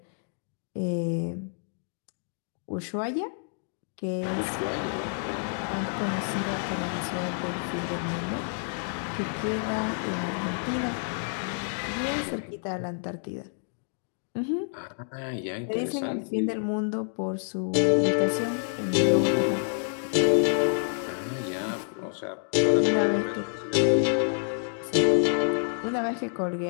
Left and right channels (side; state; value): right; silent; digital silence